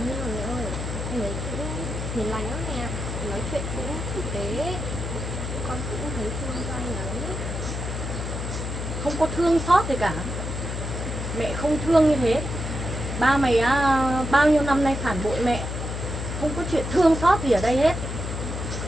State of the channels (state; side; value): noise; left; hum, 4 dB below the sound